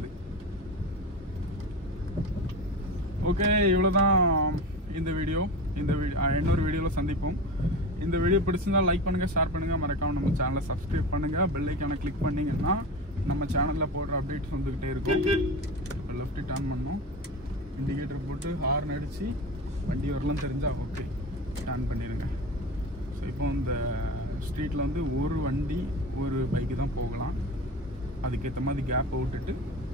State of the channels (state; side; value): normal; both; correlation 0.27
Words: ஓகே, இவ்வளோதான் இந்த வீடியோ. இன்னொரு வீடியோவில் சந்திப்போம். இந்த வீடியோ பிடிச்சிருந்தா லைக் பண்ணுங்கள், ஷேர் பண்ணுங்கள், மறக்காமல் நம்ம சேனலை சப்ஸ்கிரைப் பண்ணுங்கள். பெல் ஐக்கானை கிளிக் பண்ணிங்கன்னா நம்ம சேனலில் போடுற அப்டேட்ஸ் வந்துக்கிட்டே இருக்கும். இப்போ லெஃப்ட் டர்ன் பண்ணணும். இண்டிகேட்டர் போட்டு ஹார்ன் அடித்து வண்டி வரலாம் தெரிஞ்சால் ஓகே டர்ன் பண்ணிடுங்க. ஸோ இப்போ இந்த ஸ்ட்ரீட்டில் வந்து ஒரு வண்டி ஒரு பைக்கு தான் போகலாம். அதுக்கேற்ற மாதிரி கேப் விட்டுட்டு